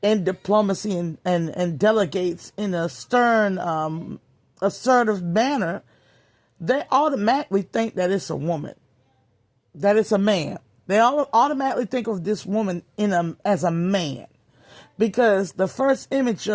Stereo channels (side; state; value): both; identical; correlation 1.00